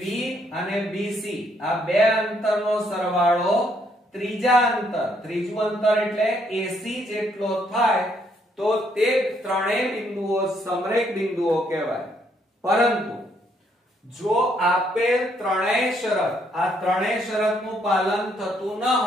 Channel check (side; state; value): both; normal; correlation 0.71